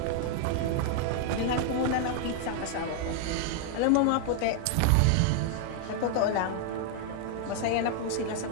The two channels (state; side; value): different; both; correlation 0.00